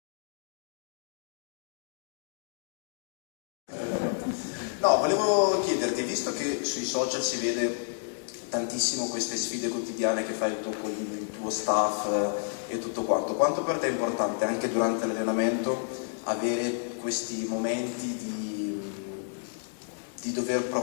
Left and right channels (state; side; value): silent; right; digital silence